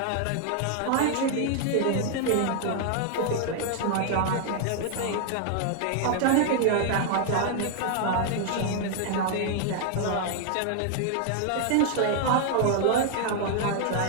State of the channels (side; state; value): both; different; correlation 0.00